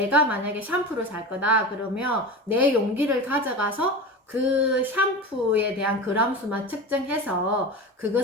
만약에 샴푸를 살 거다 그러면 내 용기를 가져가서 그 샴푸에 대한 그람수만 측정해서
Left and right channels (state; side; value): normal; both; correlation 0.28